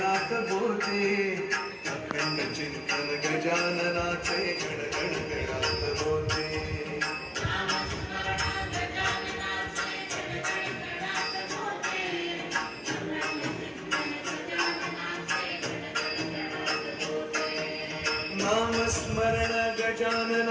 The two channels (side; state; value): both; identical; correlation 1.00